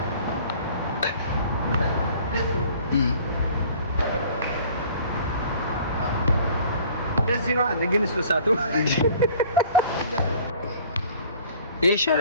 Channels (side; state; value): both; inverted; correlation -0.51